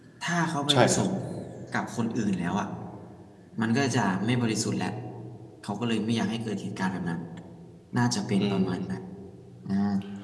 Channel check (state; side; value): identical; both; correlation 1.00